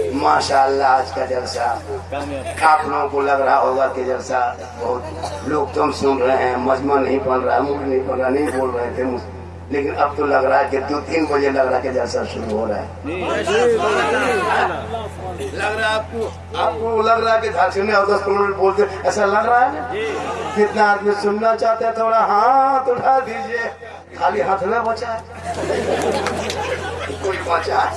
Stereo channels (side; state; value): both; identical; correlation 1.00